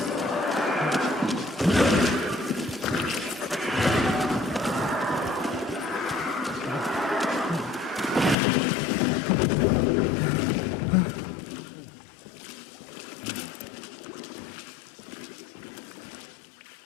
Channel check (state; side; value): drops out; right; at 8.3 s